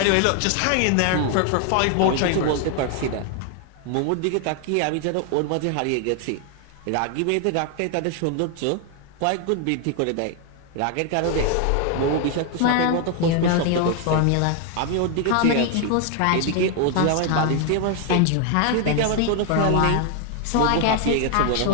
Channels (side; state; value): both; different; correlation 0.01